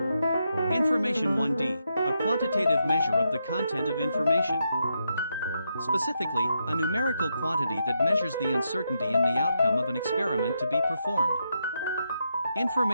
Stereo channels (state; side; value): inverted; both; correlation -0.82